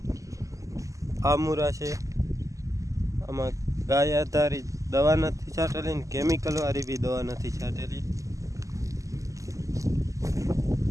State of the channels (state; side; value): late; left; 0.16 ms